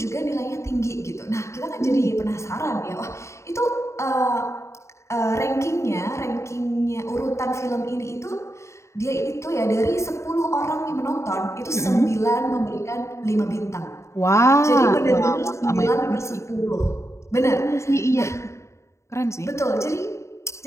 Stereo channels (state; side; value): late; right; 0.14 ms